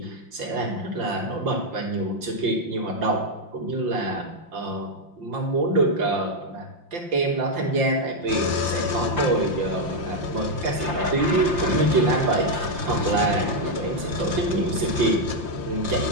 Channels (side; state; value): left; late; 5.7 ms